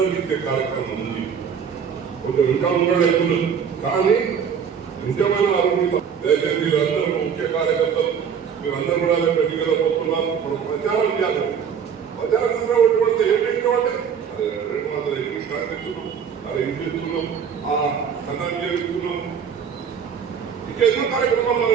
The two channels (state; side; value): quieter; left; 7.2 dB